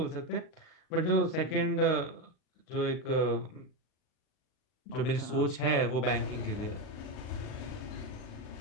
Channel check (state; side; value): late; right; 39 ms